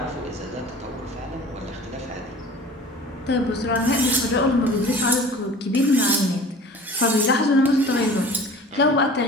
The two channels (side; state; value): both; normal; correlation 0.43